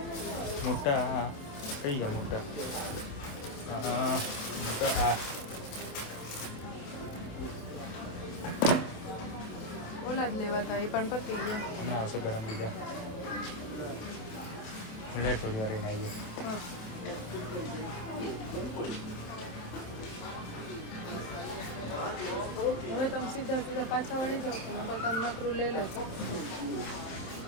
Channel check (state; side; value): late; right; 27 ms